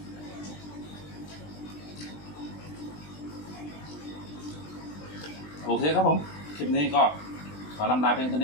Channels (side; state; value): right; late; 20 ms